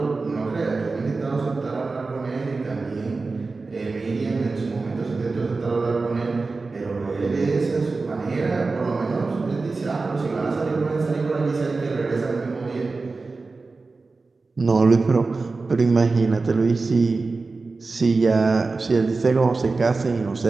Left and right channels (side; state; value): left; quieter; 3.9 dB